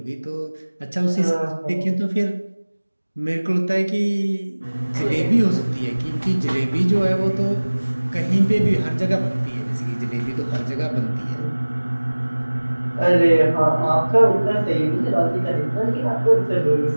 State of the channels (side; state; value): both; inverted; correlation -1.00